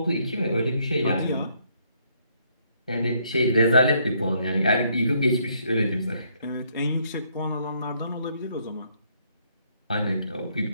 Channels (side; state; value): both; inverted; correlation -0.70